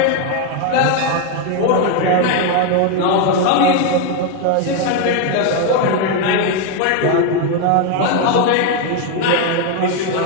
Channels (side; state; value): both; different; correlation 0.01